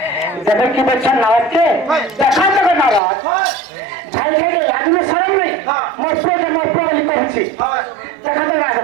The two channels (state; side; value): drops out; left; at 3.0 s